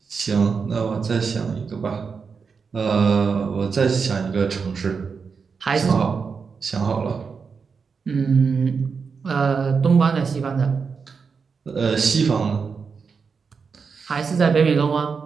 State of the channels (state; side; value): quieter; left; 5.5 dB